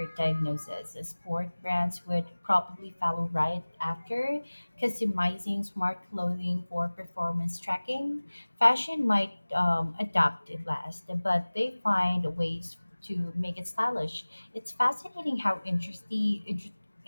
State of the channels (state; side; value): inverted; both; correlation -1.00